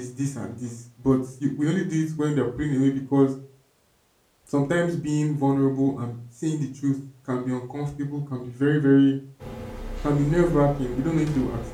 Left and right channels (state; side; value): identical; both; correlation 1.00